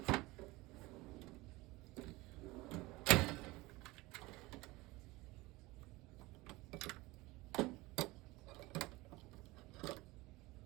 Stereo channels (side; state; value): left; quieter; 21.3 dB